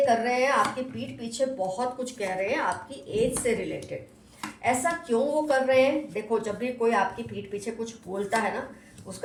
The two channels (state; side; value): identical; both; correlation 1.00